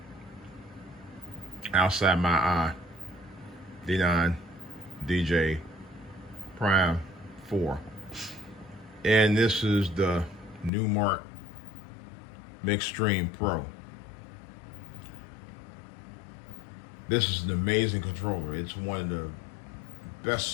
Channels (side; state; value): right; drops out; at 10.7 s